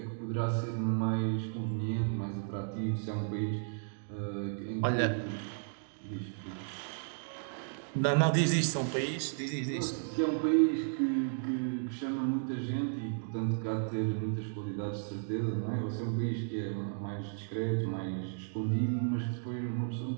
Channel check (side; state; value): left; silent; digital silence